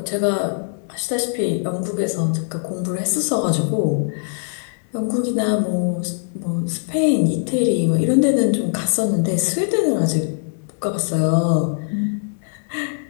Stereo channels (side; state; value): right; silent; 65 dB below the other